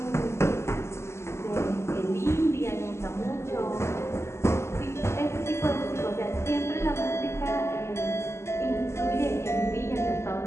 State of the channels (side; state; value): right; late; 0.13 ms